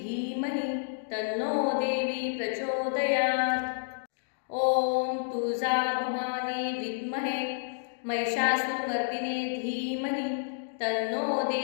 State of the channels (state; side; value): silent; right; digital silence